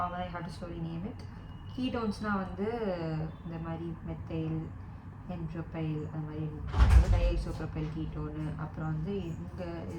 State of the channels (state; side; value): identical; both; correlation 1.00